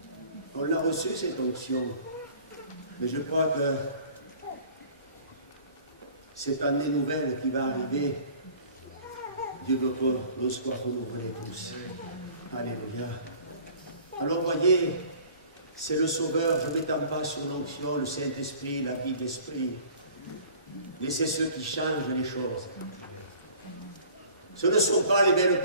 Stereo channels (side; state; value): both; inverted; correlation -0.48